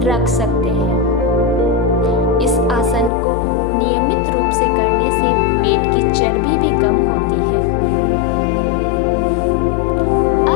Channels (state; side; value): drops out; right; at 3.1 s